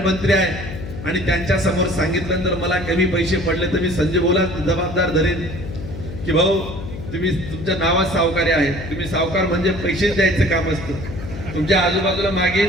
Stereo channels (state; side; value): noise; left; hum, 9 dB below the sound